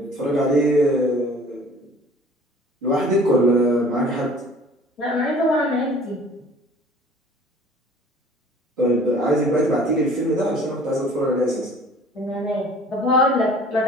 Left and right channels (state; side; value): normal; both; correlation 0.49